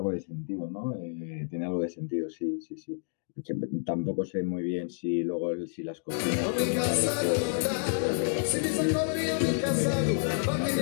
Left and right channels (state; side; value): silent; right; digital silence